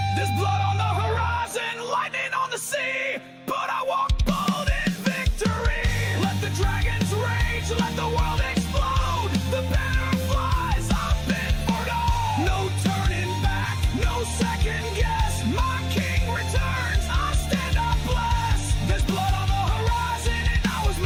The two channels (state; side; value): identical; both; correlation 1.00